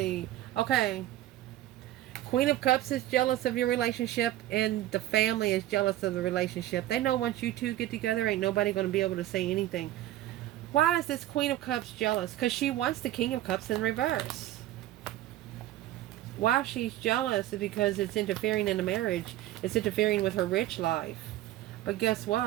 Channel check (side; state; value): left; quieter; 14.3 dB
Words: Okay. Queen of Cups is jealous of your relationship, and the family is jealous of the relationship. They know once you two get together, ain't nobody going to be able to say anything. Why is this Queen of Cups jealous? Because she wants the King of Cups in reverse. Why she's jealous is because it's interfering in the marriage. It's interfering with her rich life. But guess